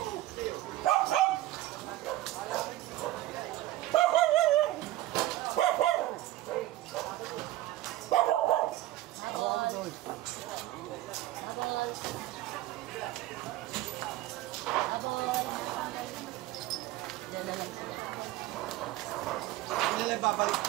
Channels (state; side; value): quieter; left; 15.7 dB